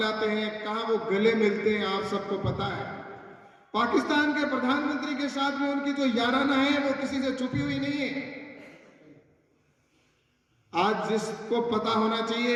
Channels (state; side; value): identical; both; correlation 1.00